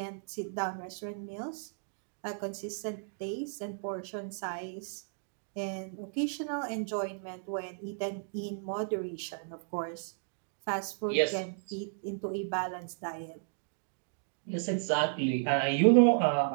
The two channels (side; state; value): left; silent; digital silence